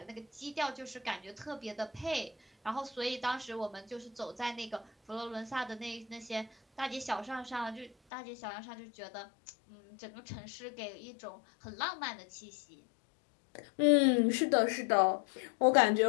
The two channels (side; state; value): right; drops out; at 8.0 s